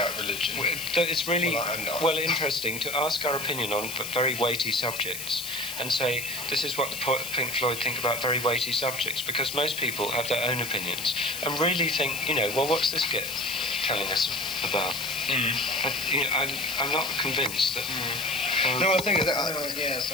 religion. That it's really Well, I'm not. interesting to ask our opinion on very weighty subjects and say this is what the Pink Floyd think about very weighty subjects, because most people have their own opinions and really think, well, what's this kid telling us about? But, I'm not convinced that. No, the thing is, Yes,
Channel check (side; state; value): left; noise; hiss, 7 dB below the sound